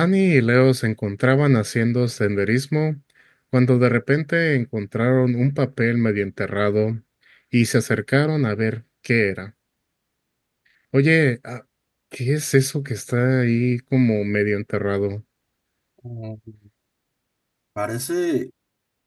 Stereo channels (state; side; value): identical; both; correlation 1.00